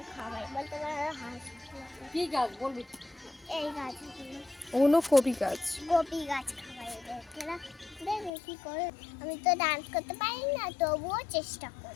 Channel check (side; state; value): right; drops out; at 8.3 s